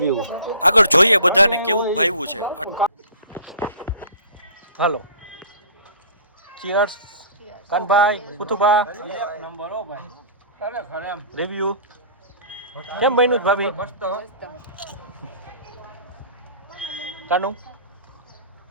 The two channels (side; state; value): both; inverted; correlation -0.44